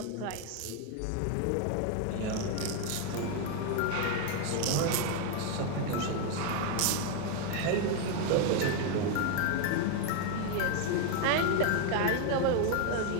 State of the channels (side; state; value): both; different; correlation 0.01